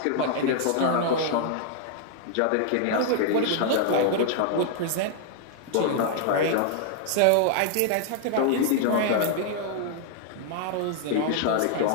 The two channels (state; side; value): different; both; correlation 0.00